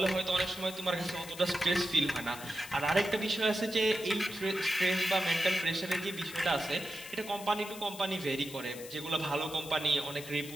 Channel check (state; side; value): noise; left; hiss, 14 dB below the sound